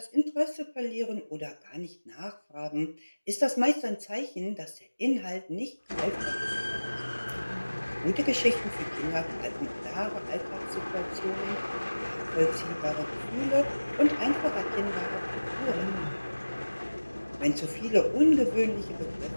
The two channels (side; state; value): both; inverted; correlation -1.00